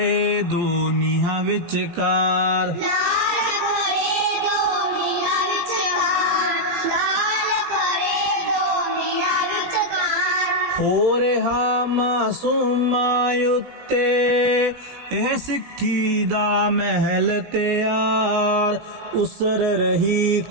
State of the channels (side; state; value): left; late; 17 ms